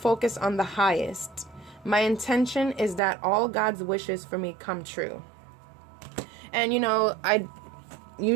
on the highest. My intention is that all God's wishes for me come true. And, you know, I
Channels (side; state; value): left; drops out; at 3.0 s